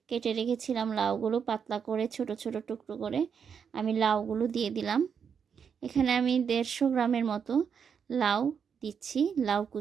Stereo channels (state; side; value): quieter; left; 6.9 dB